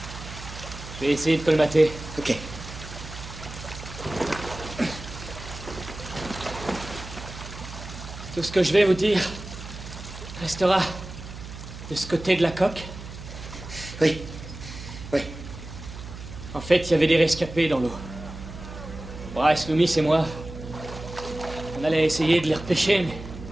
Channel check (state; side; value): noise; right; hum, 12 dB below the sound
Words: Je vais essayer de colmater. Ok. Tout ce que je vais vous dire restera de ce côté de la coque. Oui. Oui. En fait, il y avait des rescapés dans l'eau. Bryce, Loomis et moi, on allait essayer de les repêcher, mais...